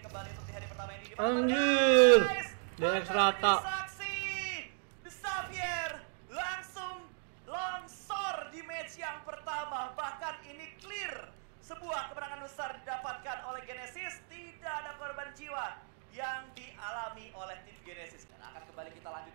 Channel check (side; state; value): left; silent; 54 dB below the other